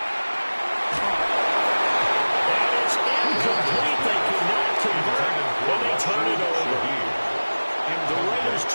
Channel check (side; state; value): both; inverted; correlation -1.00